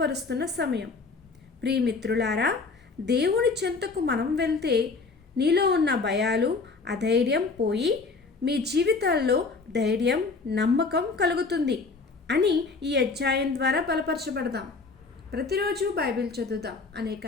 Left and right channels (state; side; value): quieter; right; 4.2 dB